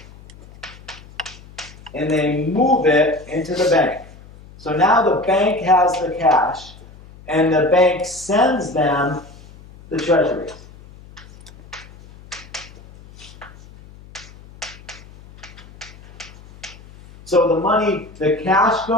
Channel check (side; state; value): left; noise; hum, 21 dB below the sound